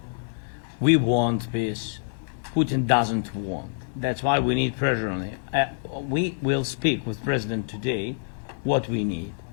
We want peace. Putin doesn't want. That's why we need pressure on him. We will speak with President today what we need.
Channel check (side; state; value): right; silent; digital silence